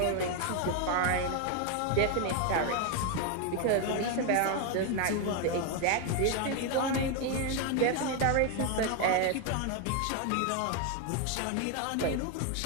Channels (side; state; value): both; different; correlation 0.01